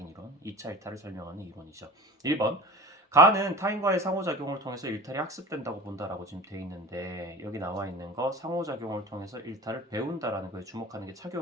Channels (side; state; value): both; normal; correlation 0.36